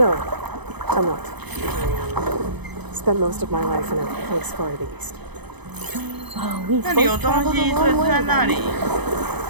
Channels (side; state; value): left; late; 0.99 ms